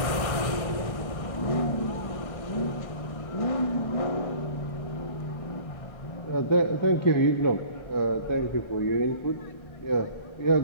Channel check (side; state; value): right; late; 1.5 ms